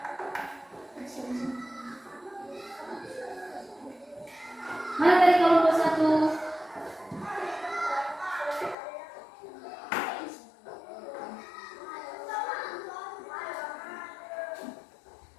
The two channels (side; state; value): right; drops out; at 8.8 s